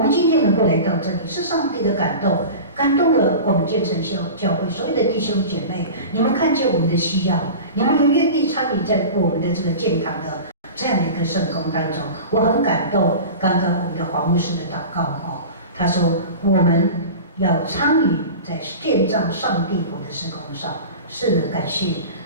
们今天能够来到这里，是上帝的感动，感动了我们建成教会所有的弟兄姐妹。你们看见我们的需要，你们也愿意参与在我们的这个建堂的这样的一个圣工当中。我很感动，刚刚我们的黄牧师的祷告哦，他说我们要参与在建造上帝国的事工上。是的，感谢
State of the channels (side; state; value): both; inverted; correlation -0.33